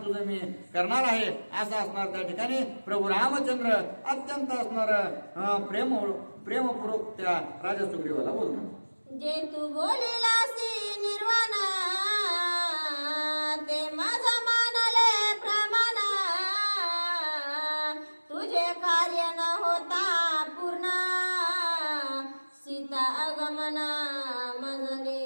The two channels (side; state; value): both; inverted; correlation -1.00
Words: तुझं मी करणार आहे असं असणार. त्या ठिकाणी प्रभू रामचंद्र अत्यंत असणार प्रेमपूर्वक त्या राजा सुग्रीवाला बोलतात. जे तू बोलिलासी निर्वाण ते माझा मानले प्रमाण तुझे कार्य न होता पूर्ण सीता आगमन माझ